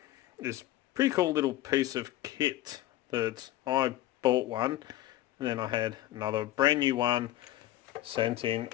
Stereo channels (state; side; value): quieter; right; 15.0 dB